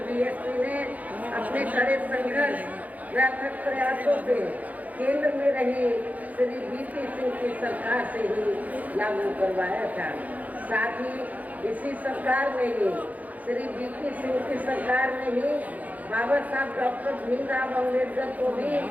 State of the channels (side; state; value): left; late; 0.077 ms